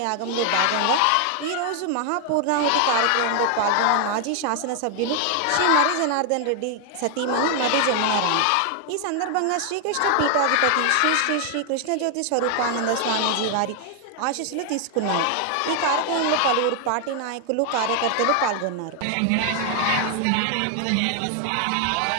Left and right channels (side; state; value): both; different; correlation 0.00